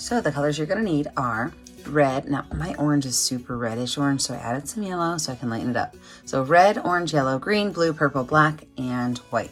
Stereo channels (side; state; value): both; identical; correlation 1.00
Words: the colors you're going to need are red. Now my orange is super reddish orange, so I added some yellow so I can lighten it up. So red, orange, yellow, green, blue, purple, black, and